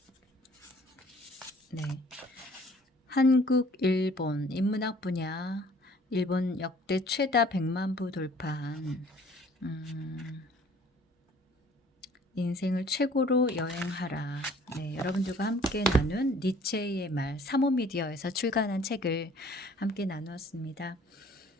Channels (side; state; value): both; normal; correlation 0.54